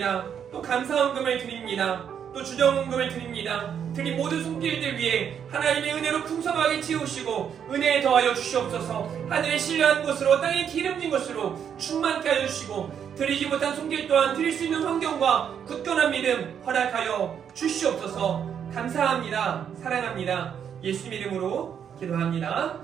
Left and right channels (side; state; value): left; quieter; 8.2 dB